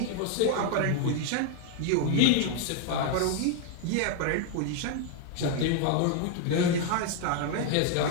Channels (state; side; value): different; both; correlation 0.00